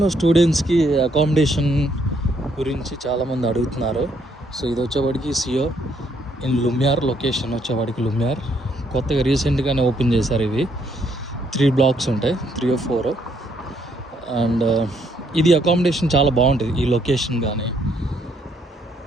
స్టూడెంట్స్కి accommodation గురించి చాలామంది అడుగుతున్నారు. సో ఇది వచ్చేవాడికి సియో ఇన్ లుమియార్, లొకేషన్ వచ్చేవాడికి లుమియార్. కొత్తగా రీసెంట్గానే ఓపెన్ చేశారు. ఇవి 3 బ్లాక్స్ ఉంటాయి, 3 or 4. అండ్ ఇది అకామిడేషన్ చాలా బాగుంటుంది. ఈ లొకేషన్ కానీ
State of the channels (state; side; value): normal; both; correlation 0.71